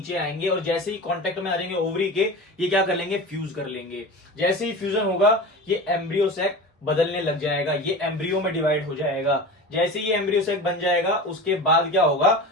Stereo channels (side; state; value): both; normal; correlation 0.31